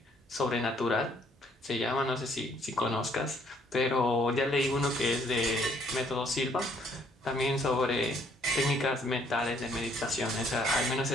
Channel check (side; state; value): both; normal; correlation 0.65